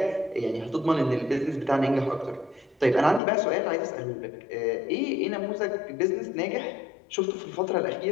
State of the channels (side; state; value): right; drops out; at 3.2 s